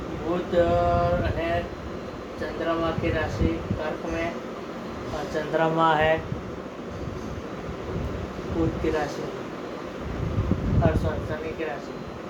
बुध है चंद्रमा की राशि कर्क में, और चंद्रमा है बुध की राशि और शनि की राशि।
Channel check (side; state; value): both; identical; correlation 1.00